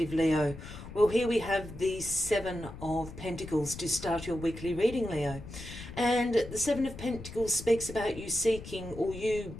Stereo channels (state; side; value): noise; left; rumble, 13 dB below the sound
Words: Leo. Well, here we have the Seven of Pentacles to start your weekly reading, Leo. And the Seven of Pentacles speaks about you seeking or you